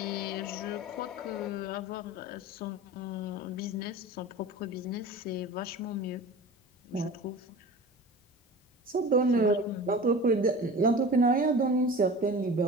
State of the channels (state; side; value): normal; both; correlation 0.36